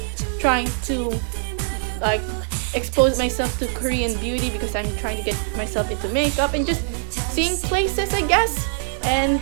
trying to like expose myself to Korean beauty because I'm trying to get myself into makeup, and just seeing places, I guess. And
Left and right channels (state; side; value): silent; left; digital silence